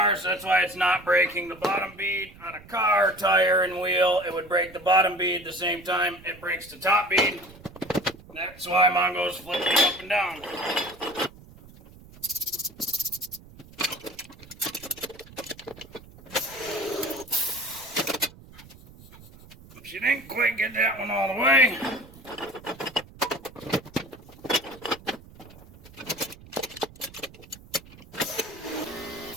so that's why it's not breaking the bottom bead. On a car, tire, and wheel, it would break the bottom bead the same time it breaks the top bead. That's why Mongo's flipping up and down. She didn't quite get that one all the way.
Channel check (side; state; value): right; noise; rumble, 21 dB below the sound